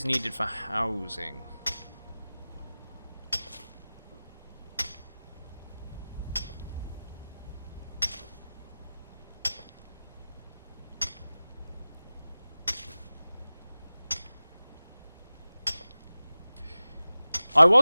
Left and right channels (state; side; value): inverted; both; correlation -0.98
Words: needed for housing. I